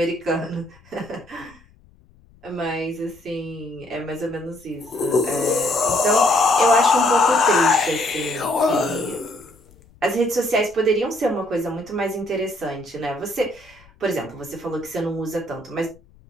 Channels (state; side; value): noise; left; rumble, 27 dB below the sound